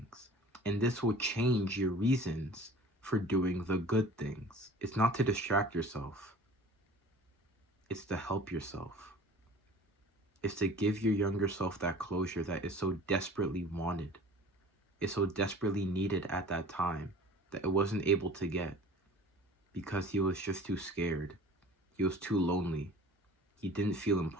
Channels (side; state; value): both; normal; correlation 0.44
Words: And this will change your reasons for doing the good things. It's not to distract yourself. It's to help yourself. It's to give your younger self that closure that is so desperately wanted. It's so desperately needed at that time that it wasn't able to get because he was just too scared. He was too lonely. He didn't feel